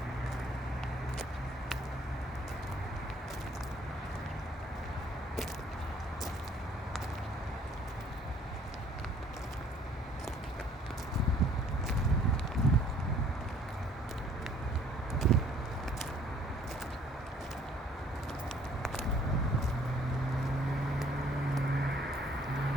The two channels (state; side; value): normal; both; correlation 0.59